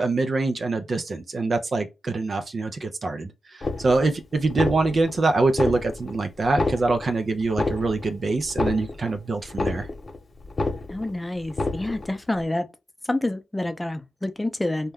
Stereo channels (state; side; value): normal; both; correlation 0.91